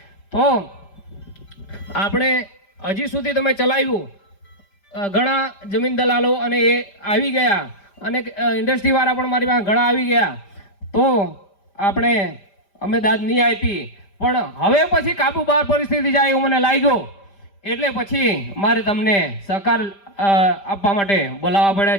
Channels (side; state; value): right; late; 5.1 ms